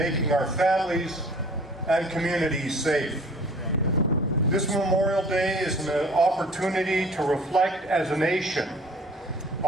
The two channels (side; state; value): both; normal; correlation 0.50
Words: our families and communities safe. This Memorial Day is an opportunity to reflect as a nation